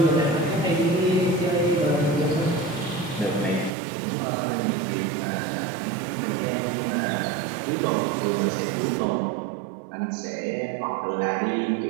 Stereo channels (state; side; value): drops out; left; at 3.7 s